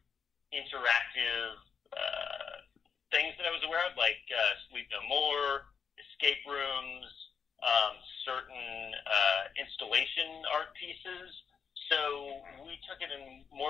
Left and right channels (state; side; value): quieter; right; 6.5 dB